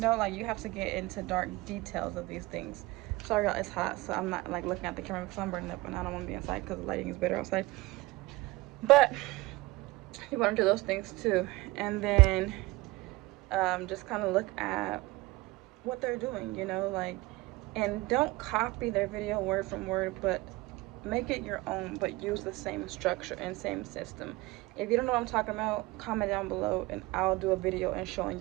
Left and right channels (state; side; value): quieter; left; 20.9 dB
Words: like, you have to get into dark details of these things. Sorry y'all, it's hot, so I'm not like looking at the camera because I'm burning up and I don't want to be inside because the lighting is better outside. But you want to do those things too, and then just kind of look at what they're doing, you know, like, and don't copy their video word from word, but make it your own, but use the same structure and same system. If you don't know what I'm talking about, comment down below and I'll do a video and showing